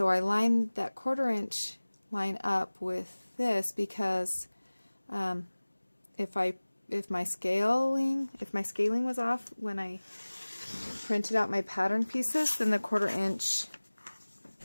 I line that 1/4 inch line up with this because if my scaling was off when I printed out my pattern pieces, then the 1/4 inch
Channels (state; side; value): inverted; both; correlation -1.00